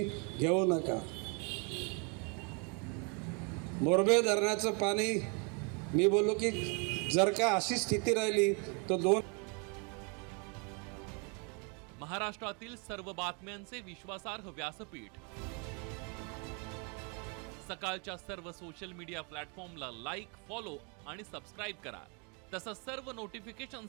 घेऊ नका. मोरबे धरणाचं पाणी मी बोललो की जर का अशी स्थिती राहिली तर 2 महाराष्ट्रातील सर्व बातम्यांचे विश्वासार्ह व्यासपीठ. सकाळच्या सर्व सोशल मीडिया प्लॅटफॉर्मला लाईक, फॉलो आणि सबस्क्राईब करा. तसंच सर्व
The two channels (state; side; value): quieter; left; 34.9 dB